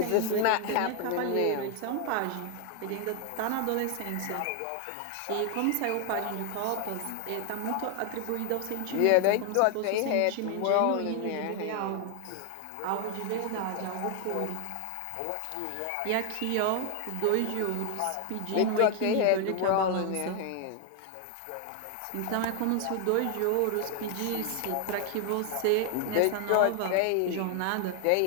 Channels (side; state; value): both; different; correlation 0.00